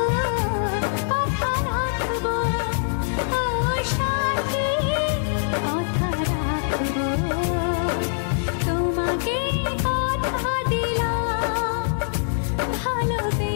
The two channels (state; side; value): silent; right; 63 dB below the other